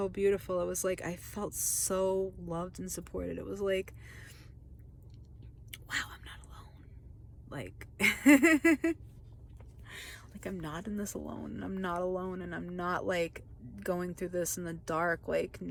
beautiful. It was like I felt so loved and supported. It was like, wow, I'm not alone. Like, like I'm not in this alone, and I'm not alone, and I'm not like going through this in the dark, like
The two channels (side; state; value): both; identical; correlation 1.00